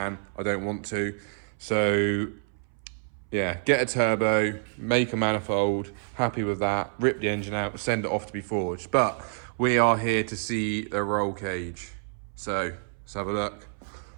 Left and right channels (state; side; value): silent; left; 60 dB below the other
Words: I don't want to. So, yeah, get a turbo, make a manifold, happy with that, rip the engine out, send it off to be forged. But we are here to see the roll cage. So, let's have a look.